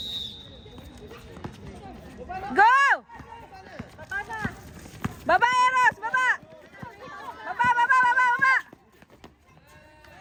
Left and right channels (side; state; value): both; identical; correlation 1.00